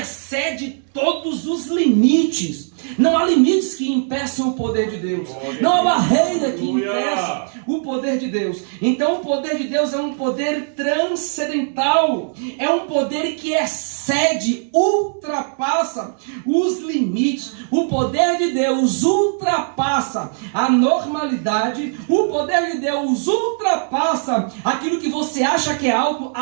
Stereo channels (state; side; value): silent; left; digital silence